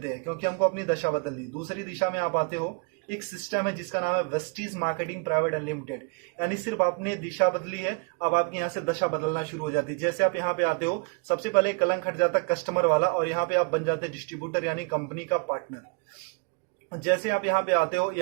हैं, क्योंकि हमको अपनी दशा बदलनी। दूसरी दिशा में आप आते हो, एक सिस्टम है जिसका नाम है वेस्टीज मार्केटिंग प्राइवेट अनलिमिटेड। यानी सिर्फ आपने दिशा बदली है, अब आपकी यहाँ से दशा बदलना शुरू हो जाती है। जैसे आप यहाँ पे आते हो, सबसे पहले कलंक हट जाता है कस्टमर वाला, और यहाँ पे आप बन जाते हैं डिस्ट्रीब्यूटर, यानी कंपनी का पार्टनर। जैसे आप यहाँ पे आते हो,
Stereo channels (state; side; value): quieter; left; 32.7 dB